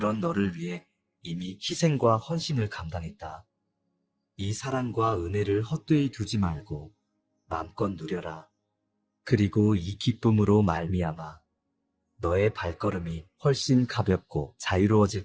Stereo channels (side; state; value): both; identical; correlation 1.00